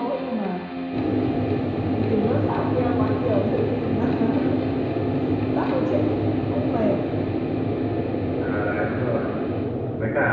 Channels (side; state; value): both; identical; correlation 1.00